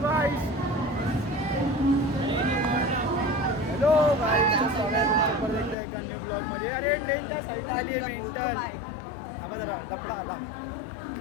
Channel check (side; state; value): right; drops out; at 5.8 s